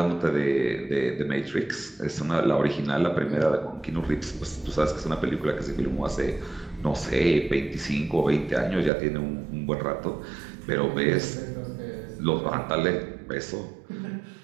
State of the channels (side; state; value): left; drops out; at 8.9 s